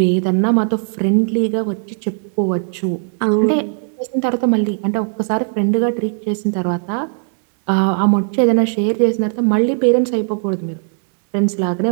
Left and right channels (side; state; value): left; silent; 57 dB below the other